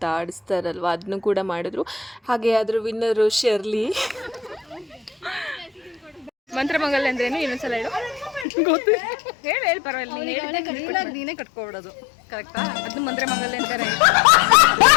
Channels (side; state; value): right; drops out; at 8.5 s